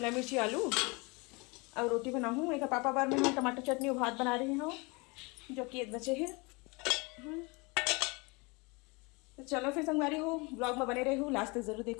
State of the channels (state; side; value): quieter; right; 27.7 dB